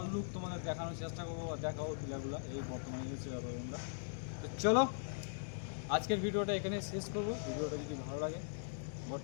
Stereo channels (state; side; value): silent; right; digital silence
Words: লুক তোমাদের দেখানোর চেষ্টা করবো বা দেখাবো ভিডিওগুলো। এই বর্তমানে হচ্ছে ব্যাপারগুলো। তো চলো, আজকের ভিডিওটা এখানে শেষ করবো। ভিডিওটা যদি ভালো লাগে